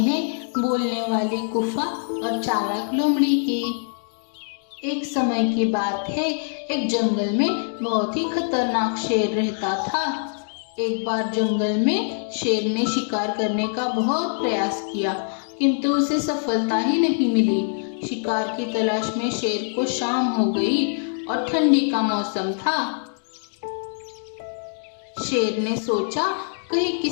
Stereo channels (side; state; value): right; silent; digital silence